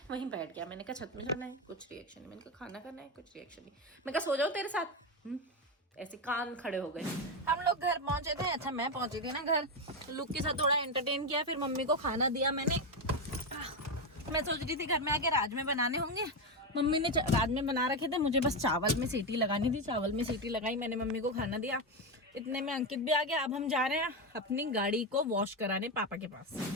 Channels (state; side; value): normal; both; correlation 0.11